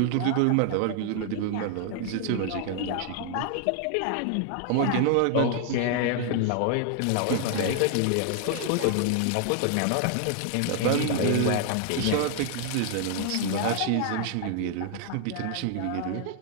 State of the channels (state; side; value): different; both; correlation 0.00